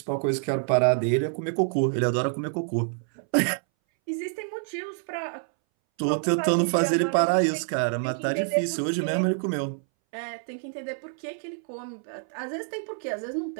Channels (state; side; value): silent; left; 60 dB below the other